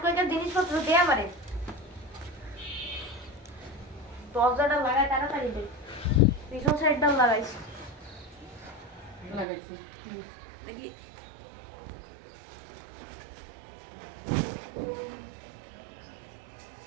কয়েকের জিনিসপত্র দে আমারে। দরজাটা লাগাই তাড়াতাড়ি দে। পিছন সাইডটা লাগাইস। লাগাইছি দেখি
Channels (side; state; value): left; drops out; at 9.5 s